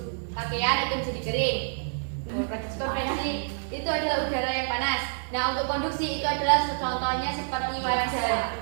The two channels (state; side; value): silent; left; 60 dB below the other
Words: pakaian itu jadi kering. Konveksi itu adalah udara yang panas. Nah, untuk konduksi itu adalah contohnya seperti wajan